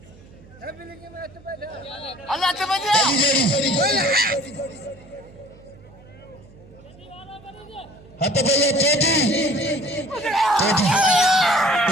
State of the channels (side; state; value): right; noise; hum, 23 dB below the sound